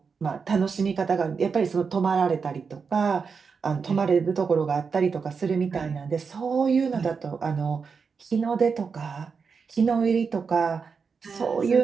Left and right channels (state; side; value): quieter; left; 5.5 dB